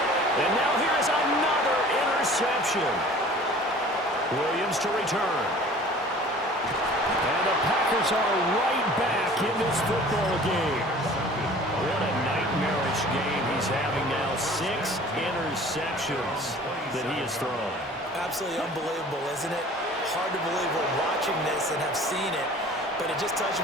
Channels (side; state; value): both; normal; correlation 0.46